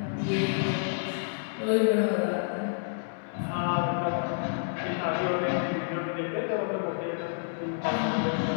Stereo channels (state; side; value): silent; right; digital silence